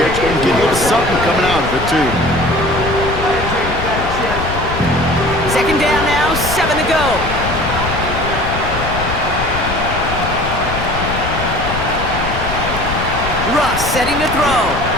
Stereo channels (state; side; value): noise; left; rumble, 6 dB below the sound